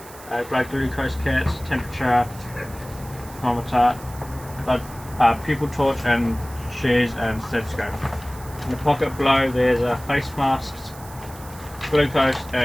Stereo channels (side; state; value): right; noise; hiss, 19 dB below the sound